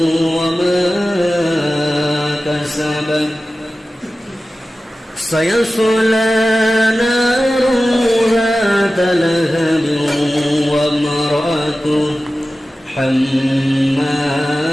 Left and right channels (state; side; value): normal; both; correlation 0.95